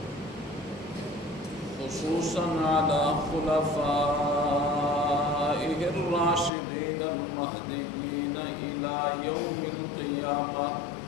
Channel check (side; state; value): right; drops out; at 6.5 s